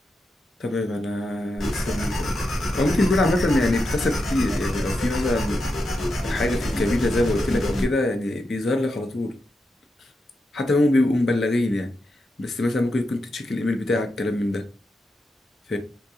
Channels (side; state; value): both; normal; correlation 0.87